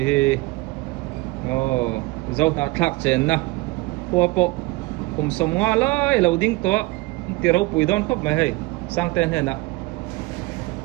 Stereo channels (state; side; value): quieter; left; 21.8 dB